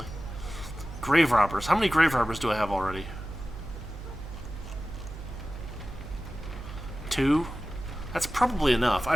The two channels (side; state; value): right; noise; hum, 11 dB below the sound